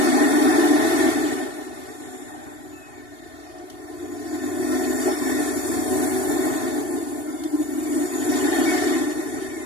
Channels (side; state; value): right; late; 2.8 ms